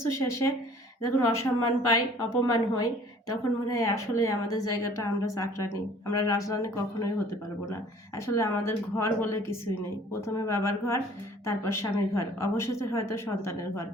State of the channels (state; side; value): normal; both; correlation 0.52